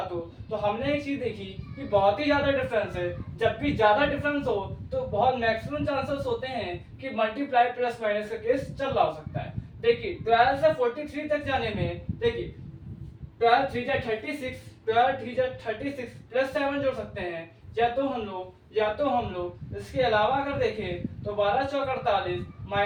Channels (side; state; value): both; identical; correlation 1.00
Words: हो, तो हमने एक चीज देखी कि बहुत ही ज्यादा डिफरेंस है। जब भी ज्यादा डिफरेंस हो तो बहुत मैक्सिमम चांसेस होते हैं कि मल्टीप्लाई प्लस माइनस का केस चल रहा हो सकता है। देखिए 12 से 43 तक जाने में, देखिए 12 3 जा 36, 12 3 जा 36 प्लस 7 जोड़ सकते हैं। या तो हम लोग इसके अलावा अगर देखें तो 12 चौक 48